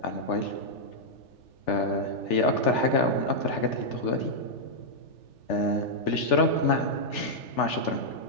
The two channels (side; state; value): right; late; 3.4 ms